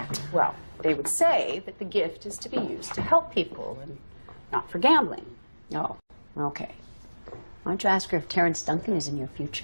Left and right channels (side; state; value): both; inverted; correlation -1.00